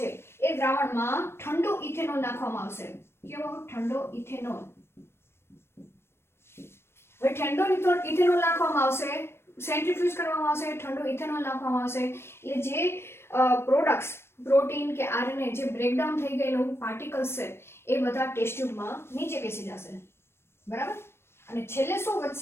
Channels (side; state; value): right; late; 0.12 ms